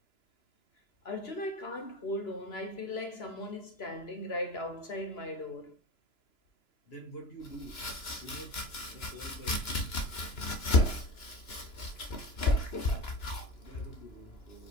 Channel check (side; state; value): right; late; 2.9 ms